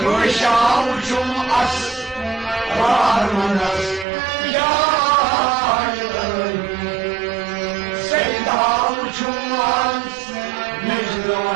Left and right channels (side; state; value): left; drops out; at 4.0 s